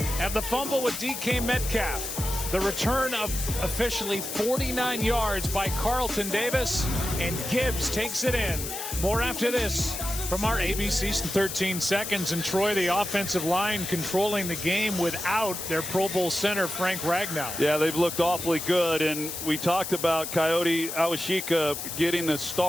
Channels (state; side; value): noise; left; hiss, 6 dB below the sound